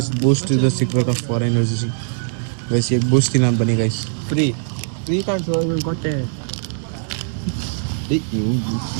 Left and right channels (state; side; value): silent; left; digital silence